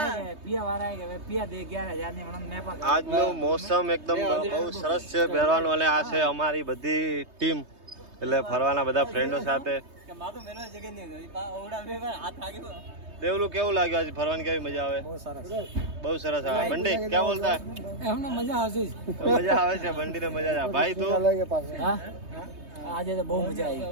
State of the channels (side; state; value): left; late; 3.2 ms